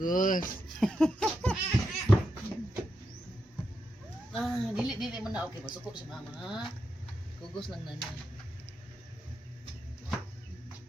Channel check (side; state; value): both; normal; correlation 0.85